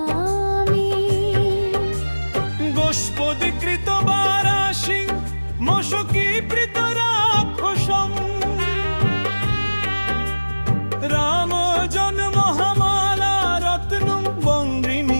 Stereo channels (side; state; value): both; inverted; correlation -1.00